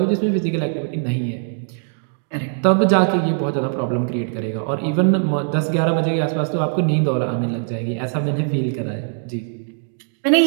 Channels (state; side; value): silent; left; digital silence